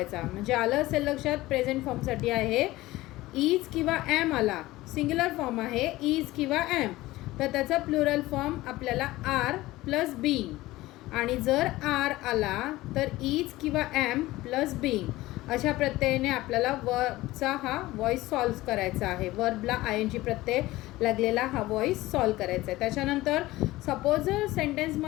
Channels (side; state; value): right; quieter; 18.1 dB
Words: म्हणजे आलं असेल लक्षात. प्रेझेंट फॉर्मसाठी आहे. इज किंवा ॲम आला, सिंग्युलर फॉर्म आहे इज किंवा ॲम, तर त्याचा प्लुरल फॉर्म आपल्याला आर प्लस बीइंग. आणि जर आर आला तर इज किंवा ॲम प्लस बीइंग अशा प्रत्ययाने आपल्याला वर्बचा हा वॉइस सॉल्व करायचा आहे. वर्बला आय एन जी प्रत्यय लागलेला हा वॉइस सॉल्व करायचा आहे. त्याच्यानंतर सपोज जर